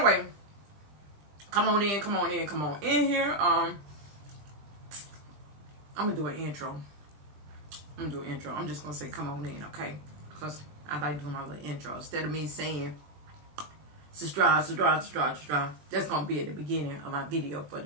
come on in here. I'm gonna do an intro. I'm just gonna say come on in, okay? Because I like doing my little intro. Instead of me saying subscribe. That's gonna be at the beginning of my video for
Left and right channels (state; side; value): late; left; 21 ms